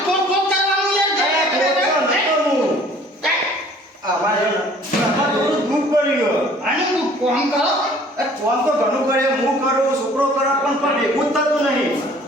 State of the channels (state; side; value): normal; both; correlation 0.53